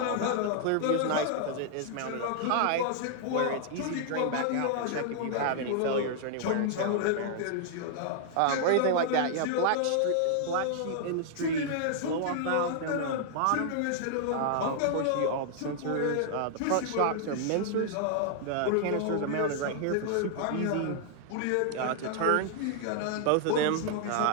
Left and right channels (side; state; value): both; different; correlation -0.01